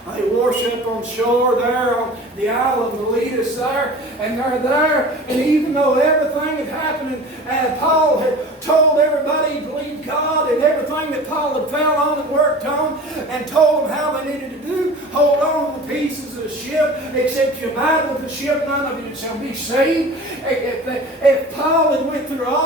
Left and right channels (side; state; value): both; normal; correlation 0.39